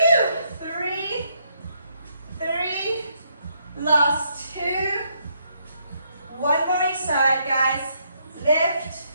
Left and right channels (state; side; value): inverted; both; correlation -0.74